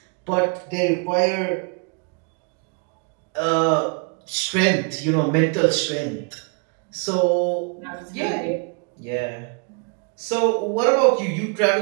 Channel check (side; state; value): left; quieter; 35.3 dB